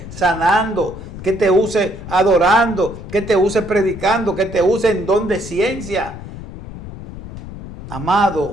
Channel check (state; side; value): noise; left; rumble, 12 dB below the sound